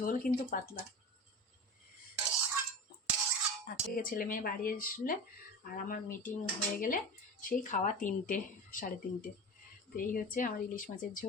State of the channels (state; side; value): normal; both; correlation 0.30